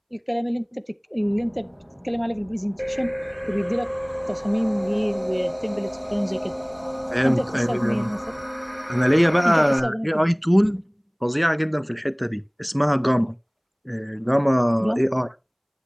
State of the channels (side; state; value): both; identical; correlation 1.00